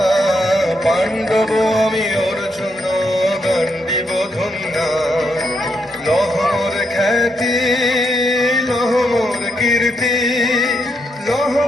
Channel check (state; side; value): normal; both; correlation 0.78